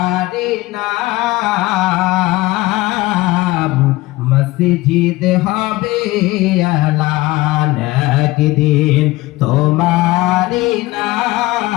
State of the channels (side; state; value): right; quieter; 19.5 dB